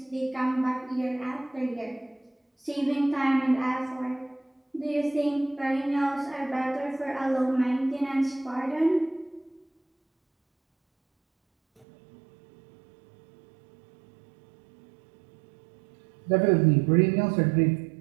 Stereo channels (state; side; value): drops out; left; at 11.9 s